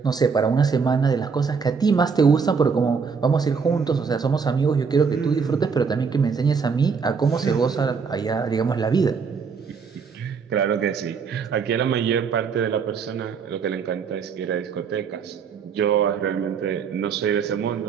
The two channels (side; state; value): left; quieter; 5.7 dB